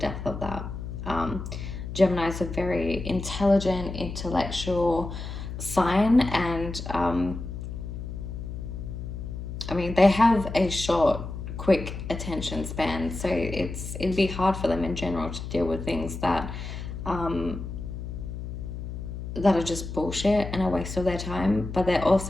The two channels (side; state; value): left; noise; hum, 7 dB below the sound